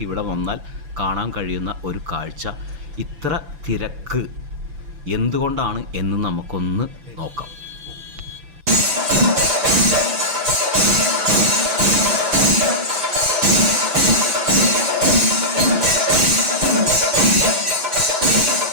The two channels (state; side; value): late; left; 6.0 ms